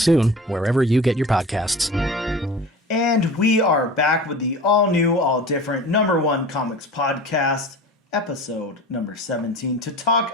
wherever you get your podcasts. And we are back with the all-new, all-different #1 Comics Podcast, episode number 17, to talk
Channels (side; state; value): both; normal; correlation 0.37